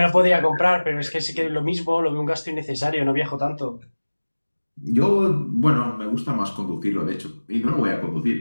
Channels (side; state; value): both; inverted; correlation -1.00